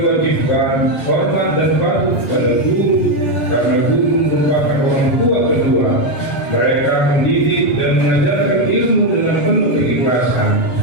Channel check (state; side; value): late; right; 7.2 ms